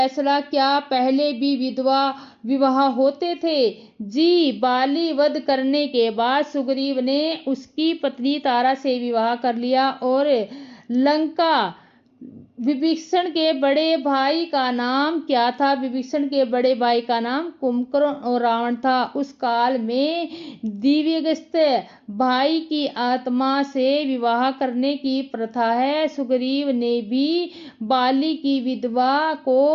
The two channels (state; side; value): identical; both; correlation 1.00